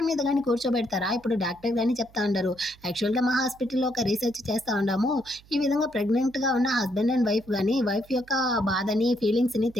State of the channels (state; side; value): noise; right; hum, 26 dB below the sound